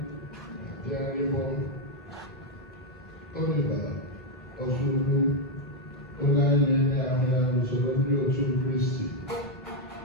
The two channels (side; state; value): both; normal; correlation 0.02